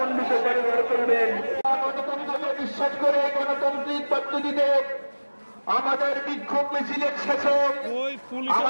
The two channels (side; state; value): both; inverted; correlation -1.00